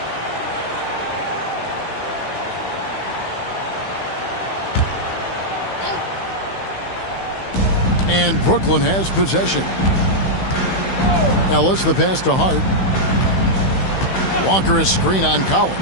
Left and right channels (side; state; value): right; late; 16 ms